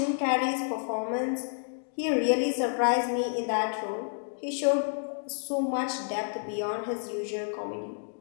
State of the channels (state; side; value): silent; right; digital silence